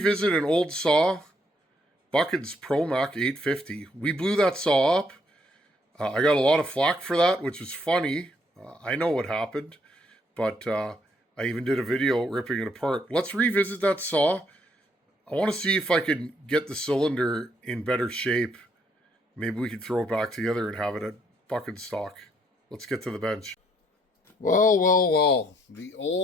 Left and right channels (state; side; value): normal; both; correlation 0.70